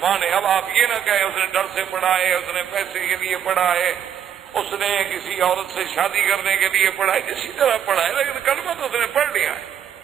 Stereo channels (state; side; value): quieter; left; 9.1 dB